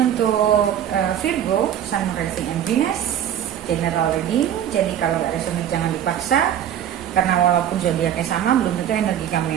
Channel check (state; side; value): quieter; left; 10.2 dB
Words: untuk Virgo, Sun, Rising, and Venus. General reading, jadi kalau nggak resonate jangan dipaksa. Karena walaupun zodiaknya sama, belum tentu energi kamu